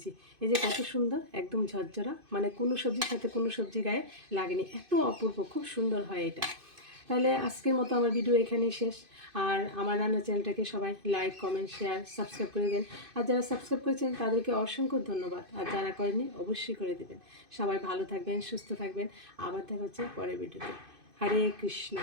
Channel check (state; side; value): late; left; 2.5 ms